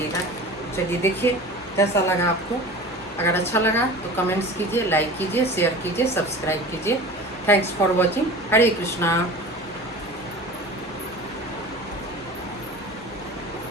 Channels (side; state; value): left; noise; hum, 27 dB below the sound